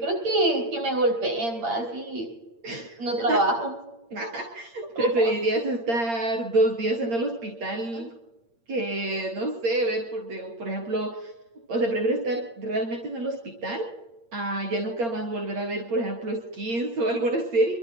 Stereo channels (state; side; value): late; left; 8.7 ms